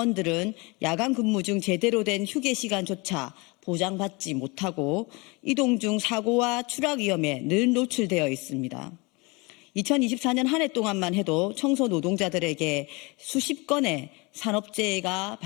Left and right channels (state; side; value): quieter; right; 27.0 dB